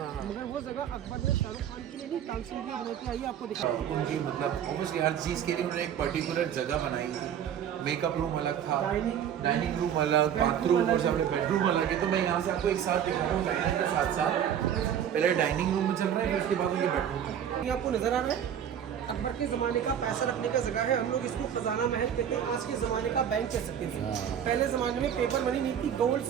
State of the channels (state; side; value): quieter; left; 9.2 dB